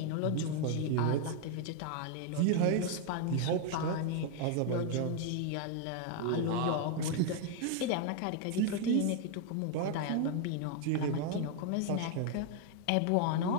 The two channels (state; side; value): different; both; correlation 0.00